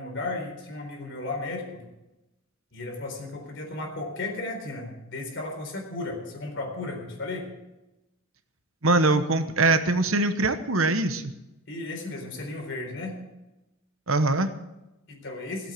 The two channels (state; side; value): normal; both; correlation 0.23